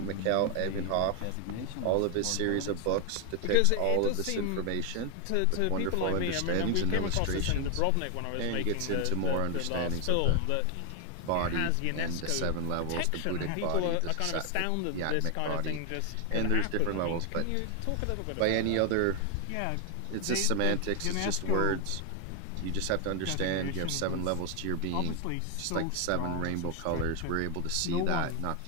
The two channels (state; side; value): different; both; correlation 0.00